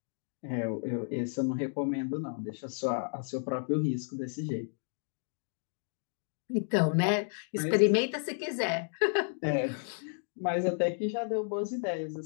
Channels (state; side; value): silent; right; digital silence